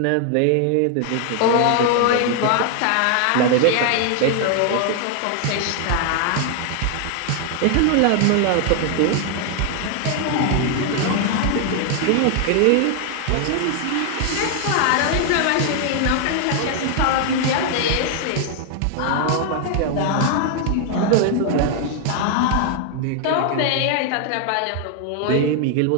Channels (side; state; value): both; different; correlation 0.00